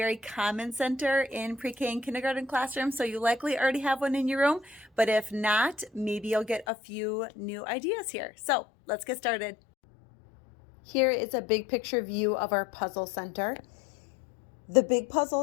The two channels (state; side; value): drops out; right; at 6.7 s